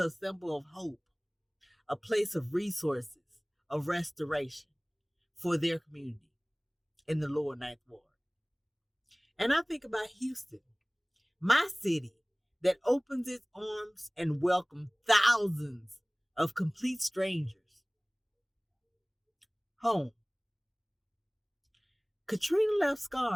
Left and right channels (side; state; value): both; identical; correlation 1.00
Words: symbol of hope, a place of resources, of restoration for their community in the lower ninth ward. And I think about Houston, my city, that opens its arms and welcomes thousands of complete strangers home. Katrina left